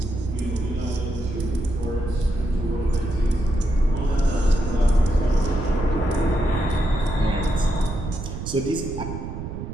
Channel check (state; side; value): noise; right; rumble, 7 dB below the sound